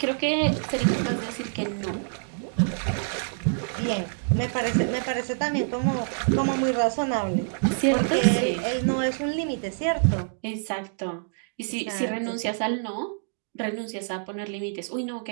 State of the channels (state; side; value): silent; left; digital silence